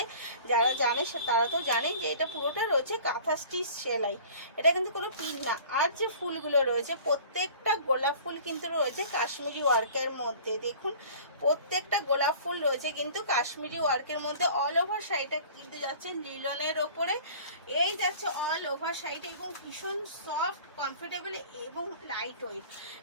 যারা জানে তারা তো জানেন যে এটা পুরোটা রয়েছে কাঁথা স্টিচ সেলাই, এটা কিন্তু কোনো পিন না। আর যে ফুলগুলো রয়েছে প্রত্যেকটা গোলাপ ফুল কিন্তু রয়েছে কাশ্মীরি ওয়ার্কের মধ্যে। দেখুন প্রত্যেকটা গোলাপ ফুল রয়েছে কিন্তু কাশ্মীরি ওয়ার্কের মধ্যে। অল ওভার শাড়িটা কিন্তু যাচ্ছে লিলনের ওপরে, এই যাচ্ছে অল ওভার শাড়িটা, এবং ভীষণ সফট, কমফোর্টেবল এবং লাইট ওয়েট,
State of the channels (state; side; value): inverted; both; correlation -0.45